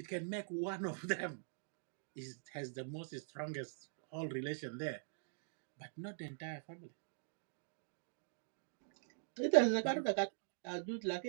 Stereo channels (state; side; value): silent; left; digital silence